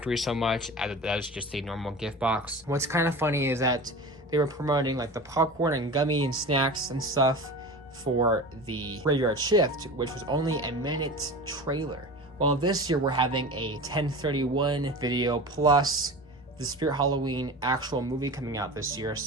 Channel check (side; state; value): both; normal; correlation 0.32